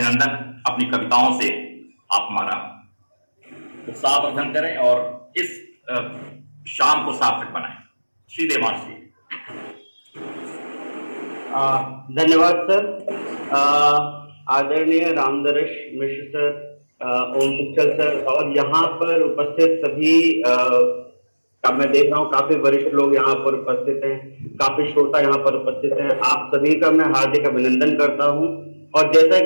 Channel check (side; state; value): both; inverted; correlation -1.00